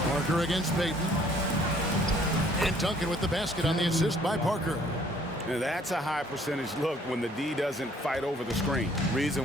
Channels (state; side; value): normal; both; correlation 0.60